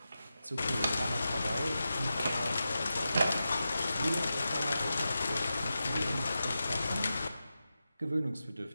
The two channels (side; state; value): both; inverted; correlation -0.91